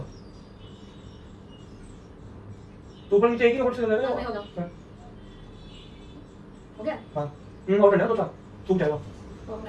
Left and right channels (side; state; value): both; identical; correlation 1.00